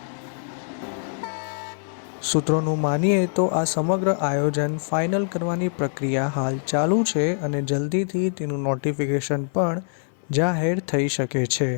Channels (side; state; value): right; silent; 57 dB below the other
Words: સૂત્રોનું માનીએ તો આ સમગ્ર આયોજન ફાઇનલ કરવાની પ્રક્રિયા હાલ ચાલુ છે અને જલ્દીથી તેનું નોટિફિકેશન પણ જાહેર થઈ શકે છે.